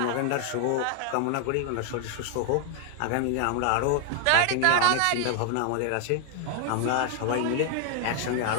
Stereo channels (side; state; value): both; different; correlation 0.00